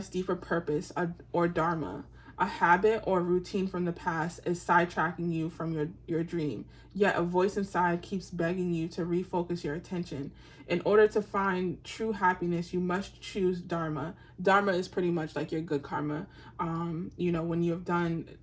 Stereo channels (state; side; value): identical; both; correlation 1.00